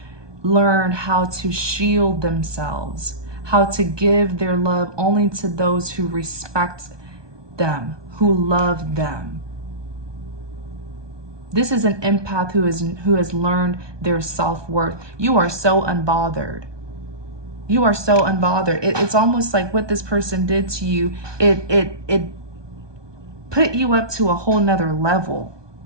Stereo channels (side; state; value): left; late; 1.2 ms